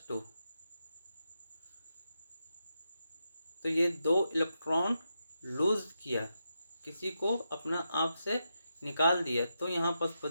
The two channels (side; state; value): both; inverted; correlation -0.86